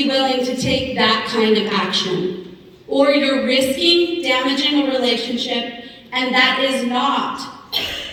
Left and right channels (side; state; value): both; identical; correlation 1.00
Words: willing to take that kind of action. Or you're risking damaging a relationship, and that is not